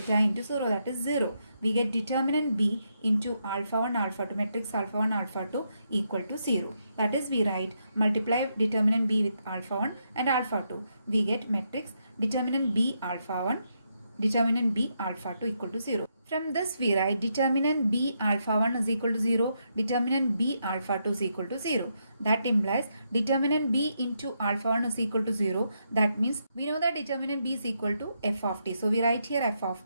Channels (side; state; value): both; inverted; correlation -0.80